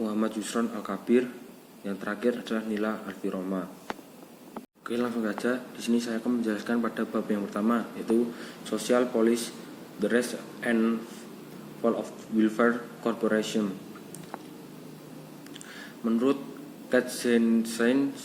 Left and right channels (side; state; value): both; identical; correlation 1.00